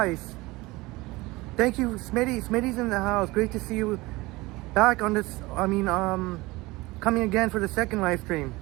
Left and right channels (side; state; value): left; quieter; 21.4 dB